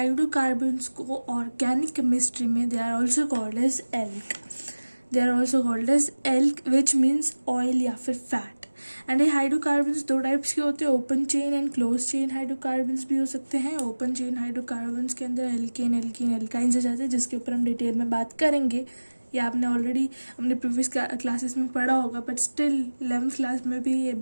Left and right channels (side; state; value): both; inverted; correlation -1.00